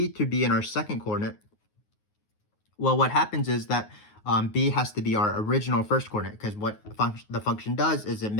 to be in our second coordinate, well, what happens is that b has to be our original first coordinate, because what the function does is it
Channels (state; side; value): late; right; 9.5 ms